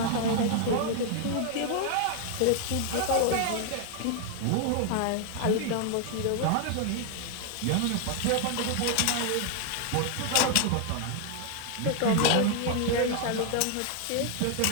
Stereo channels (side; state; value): both; different; correlation 0.00